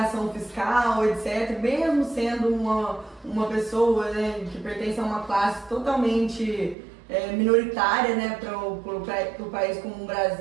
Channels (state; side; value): drops out; left; at 6.8 s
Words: fiscal, etc., mesmo sendo uma pessoa, né, que pertence a uma classe totalmente minoritária, né, para o país como o